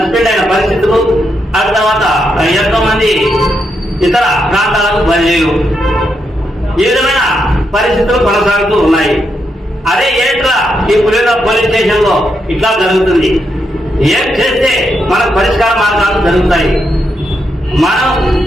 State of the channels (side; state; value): both; normal; correlation 0.81